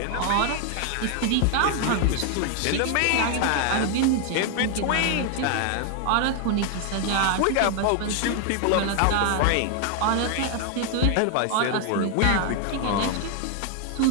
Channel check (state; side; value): different; both; correlation 0.00